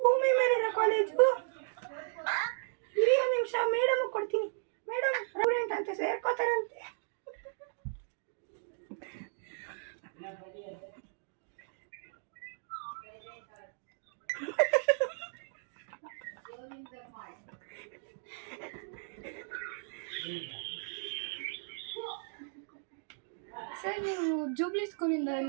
ಮೇಲಿನ ಕಾಲೇಜು. ಇರಿ ಒಂದು ನಿಮಿಷ, ಮೇಡಮ್ ಕೊಡ್ತೀನಿ. ಮೇಡಮ್ ಸ್ಟೂಡೆಂಟ್ ಅಂತ ಸೇರ್ಕೋತಾರಂತೆ. ಸರ್, ನೀವು ಜೂಬ್ಲಿ ಸ್ಕೂಲಿಂದ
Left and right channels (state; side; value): silent; left; digital silence